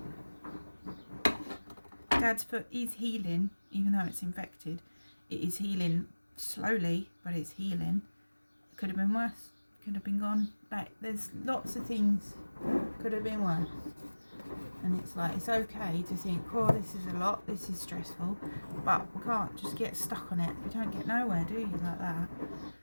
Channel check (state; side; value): inverted; both; correlation -1.00